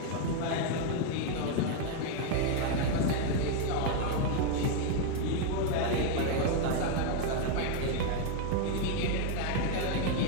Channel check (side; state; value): both; different; correlation 0.01